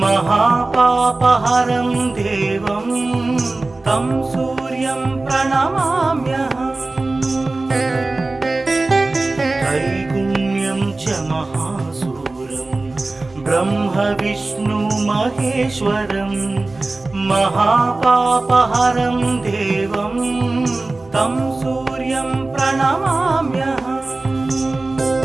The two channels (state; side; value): quieter; left; 3.2 dB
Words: महापापहरं देवं तं सूर्यं प्रणमाम्यहम् त्रैगुण्यं च महासूरं ब्रह्म विष्णु महेश्वरं महापापहरं देवं तं सूर्यं प्रणमाम्यहम्